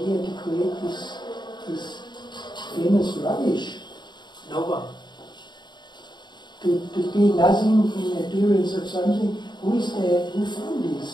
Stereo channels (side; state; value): right; late; 0.21 ms